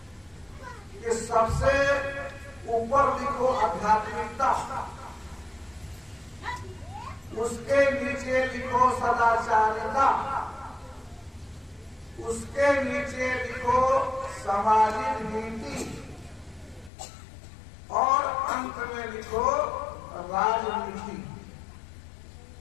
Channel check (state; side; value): drops out; right; at 16.9 s